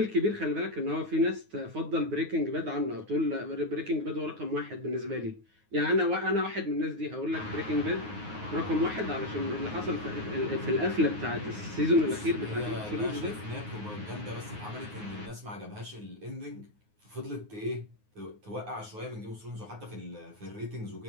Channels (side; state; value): left; late; 9.5 ms